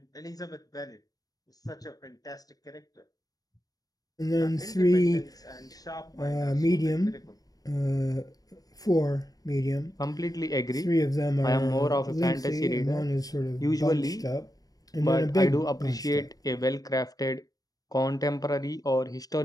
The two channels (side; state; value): right; late; 0.18 ms